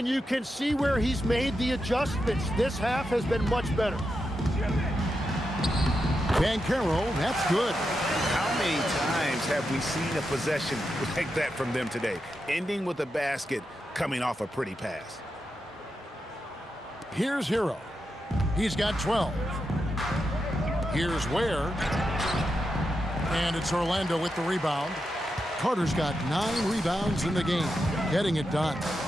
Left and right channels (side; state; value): both; normal; correlation 0.87